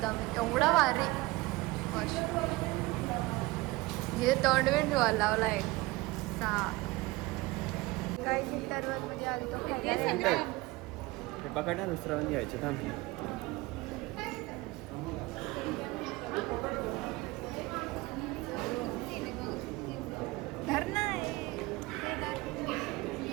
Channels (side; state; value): left; quieter; 21.1 dB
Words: आम्ही. एवढा भारी. हे तोंडविंड लावला आहे. काही चिंतावर म्हणजे आलो पकडा दुसरा घ्यायचं थांब.